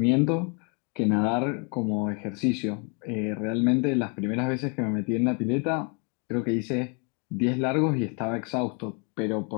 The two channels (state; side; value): quieter; right; 35.9 dB